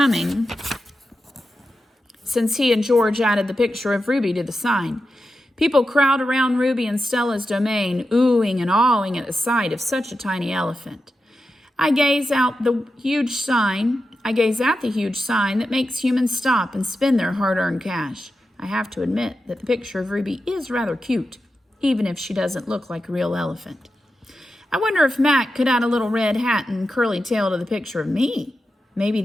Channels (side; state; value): both; normal; correlation 0.90